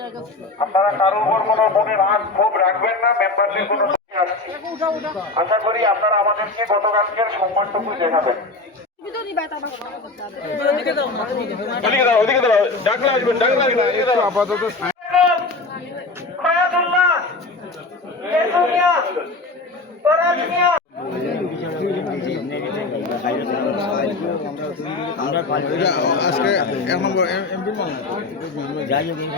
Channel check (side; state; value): right; quieter; 3.4 dB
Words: আপনারা কারোর উপর কোনো মনে রাগ ক্ষোভ রাখবেন না, মেম্বারদের কোনো আসছি। আশা করি আপনারা আমাদেরকে গতকালকের সম্মানটুকু দেখাবেন। আপাতত আজকে এমপি যাই